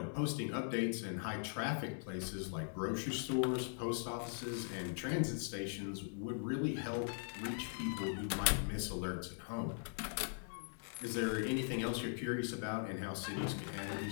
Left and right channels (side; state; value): right; silent; digital silence